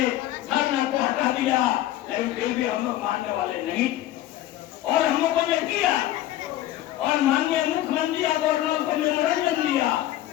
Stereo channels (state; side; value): quieter; right; 14.0 dB